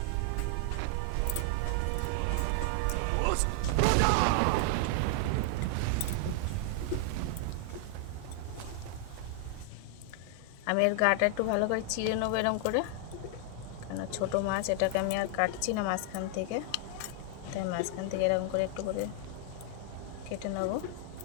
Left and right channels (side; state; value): both; different; correlation 0.00